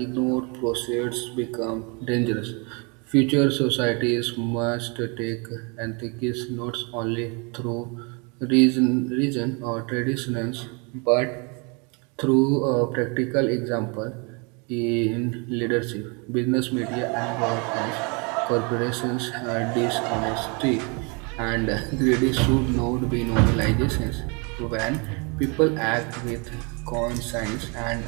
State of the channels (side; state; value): left; quieter; 32.5 dB